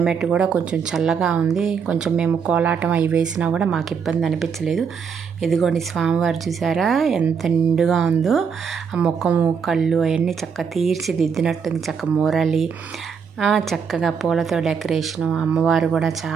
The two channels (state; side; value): quieter; left; 6.4 dB